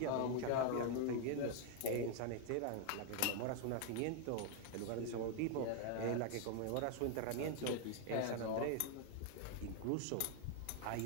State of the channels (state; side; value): different; both; correlation 0.00